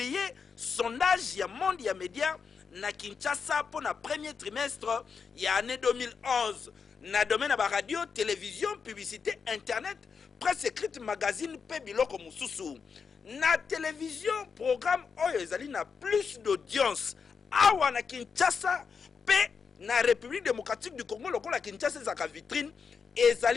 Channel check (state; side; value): quieter; right; 5.8 dB